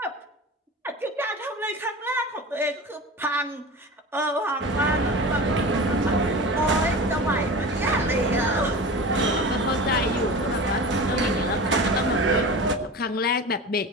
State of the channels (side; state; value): both; normal; correlation 0.32